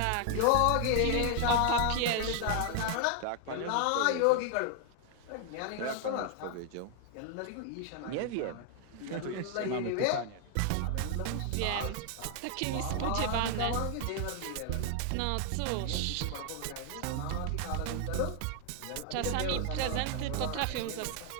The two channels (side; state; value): both; different; correlation 0.00